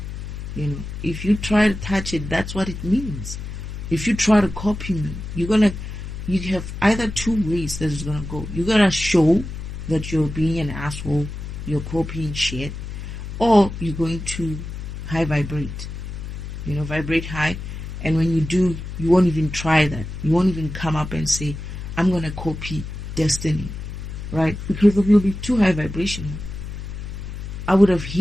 You know, if you try to touch it, that's what it means. If you try to copy me, you have either two ways that it's gonna go. You're gonna show that you're being an asshole, you're copying shit, or you're going to high vibrate. You know, vibrate high, and when you do, you won't even try that. You won't even come up and say, I'm gonna copy Destiny, right? Because you'll be too high vibrational. I would have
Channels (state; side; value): noise; left; hum, 8 dB below the sound